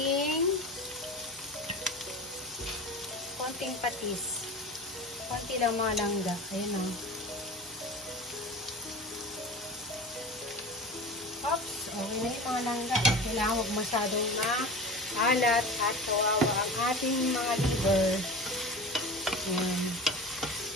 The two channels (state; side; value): normal; both; correlation 0.33